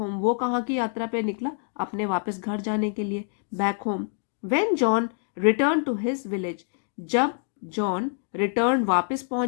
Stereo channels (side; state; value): right; silent; 61 dB below the other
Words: वो कहाँ की यात्रा पे निकला, अपने वापस घर जाने के लिए, back home. When John return to his village, जब जॉन रिटर्न वापस